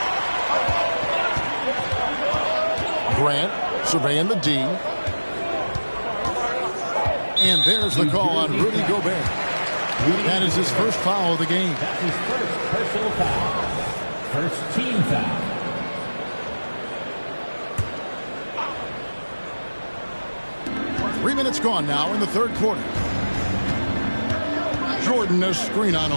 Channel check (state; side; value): inverted; both; correlation -1.00